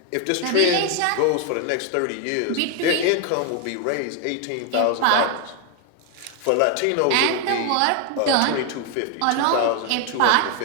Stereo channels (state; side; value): different; both; correlation 0.01